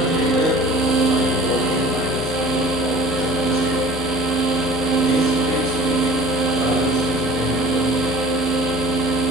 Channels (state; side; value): normal; both; correlation 0.45